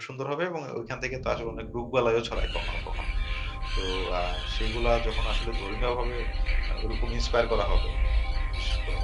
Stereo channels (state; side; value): identical; both; correlation 1.00